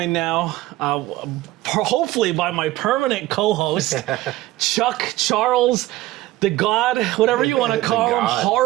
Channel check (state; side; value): quieter; left; 16.7 dB